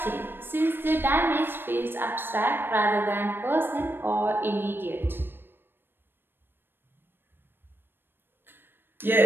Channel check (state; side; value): late; left; 0.099 ms